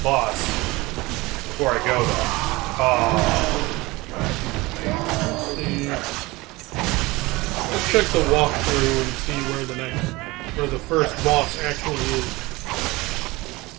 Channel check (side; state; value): left; quieter; 21.7 dB